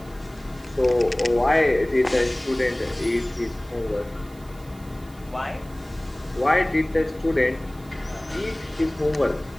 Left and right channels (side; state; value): right; noise; hiss, 25 dB below the sound